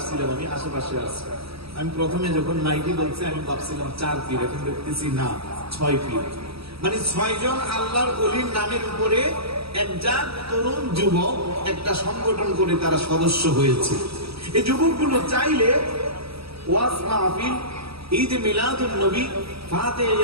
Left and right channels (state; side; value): late; left; 0.77 ms